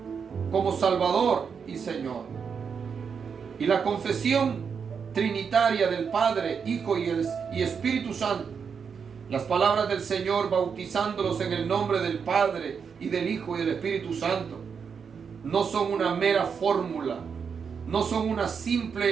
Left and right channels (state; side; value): quieter; left; 6.4 dB